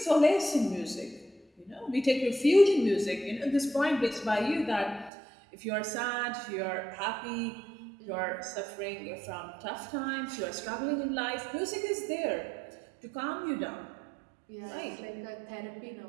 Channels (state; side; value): drops out; left; at 5.1 s